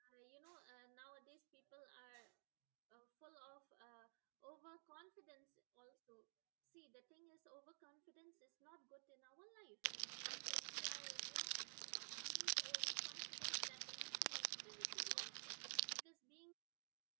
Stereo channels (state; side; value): silent; left; digital silence